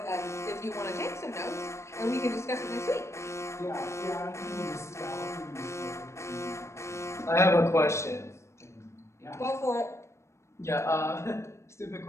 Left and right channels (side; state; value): right; late; 0.13 ms